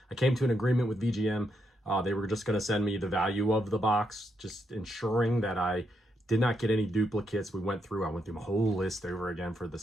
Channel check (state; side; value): normal; both; correlation 0.80